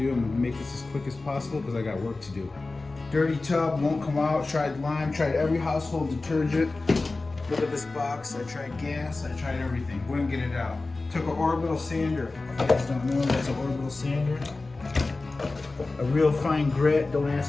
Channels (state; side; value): quieter; right; 3.4 dB